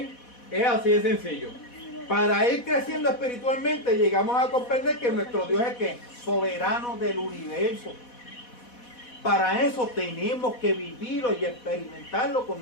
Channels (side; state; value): right; late; 4.1 ms